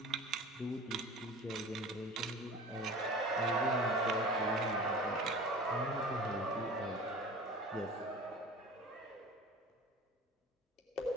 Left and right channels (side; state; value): both; normal; correlation 0.39